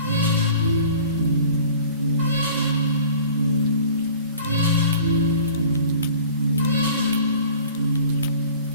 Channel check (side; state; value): both; inverted; correlation -0.46